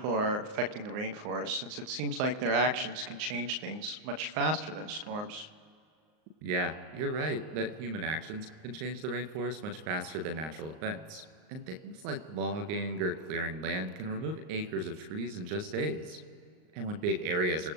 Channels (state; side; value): late; left; 38 ms